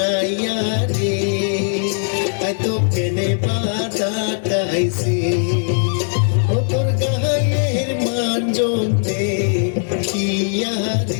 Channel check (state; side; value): silent; right; digital silence